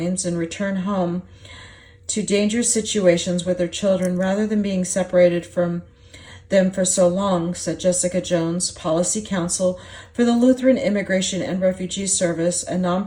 and return home to dangerous situations with their children rather than being separated from them for so long, said Jessica Jones, policy counsel for the Lutheran Immigration and Refugee Service, a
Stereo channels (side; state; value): both; identical; correlation 1.00